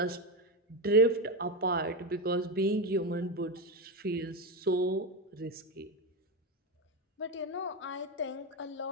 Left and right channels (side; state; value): both; normal; correlation 0.14